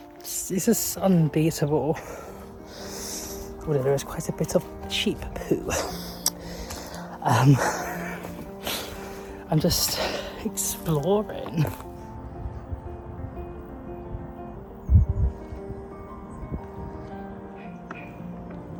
just unbeatable. Although there is quite a bit of sheep poo. I'm just exploring.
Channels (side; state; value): both; identical; correlation 1.00